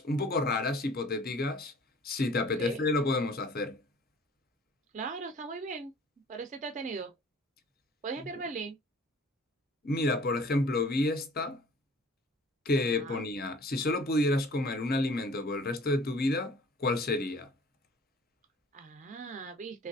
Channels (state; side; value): normal; both; correlation 0.50